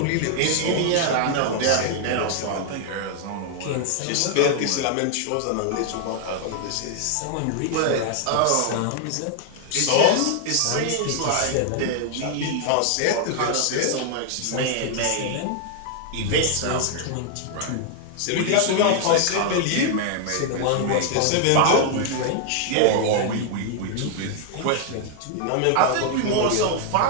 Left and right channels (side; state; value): both; different; correlation 0.00